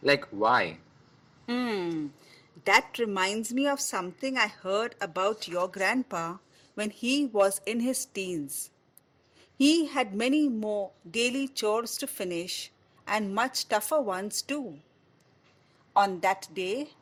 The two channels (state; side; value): identical; both; correlation 1.00